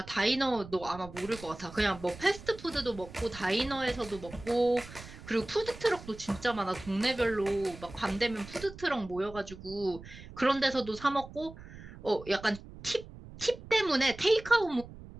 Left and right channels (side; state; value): right; noise; rumble, 16 dB below the sound